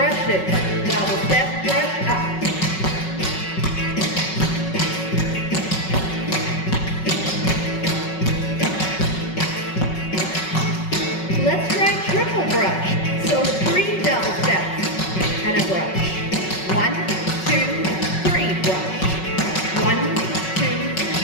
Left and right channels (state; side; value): late; right; 5.4 ms